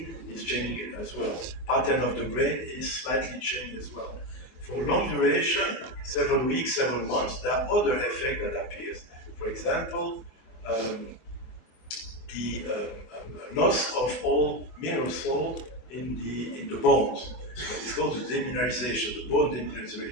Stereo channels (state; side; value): late; right; 24 ms